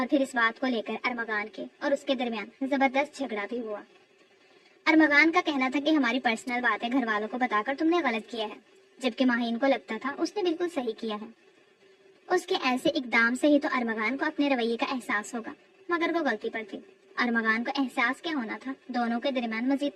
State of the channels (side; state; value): both; identical; correlation 1.00